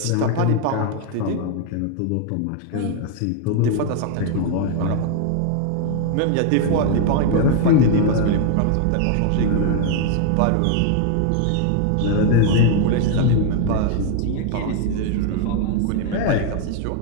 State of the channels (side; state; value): both; different; correlation 0.00